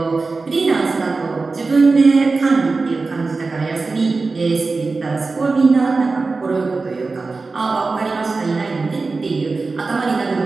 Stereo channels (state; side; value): quieter; left; 3.9 dB